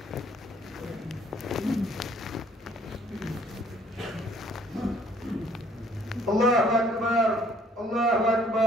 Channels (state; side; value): normal; both; correlation 0.60